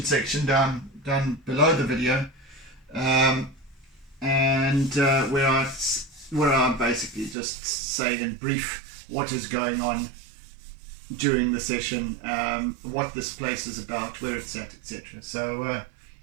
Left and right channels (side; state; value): left; drops out; at 7.4 s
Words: section down below the video, and where I basically just say in brief what is going on during the session, what this place is about, where it's at, etc. So